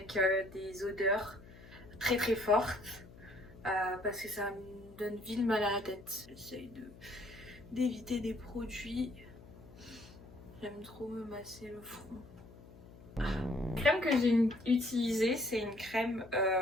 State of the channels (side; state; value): left; noise; hum, 19 dB below the sound